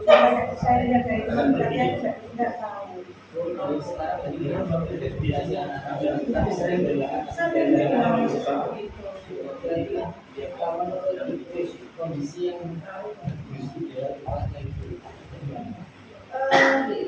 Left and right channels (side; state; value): both; identical; correlation 1.00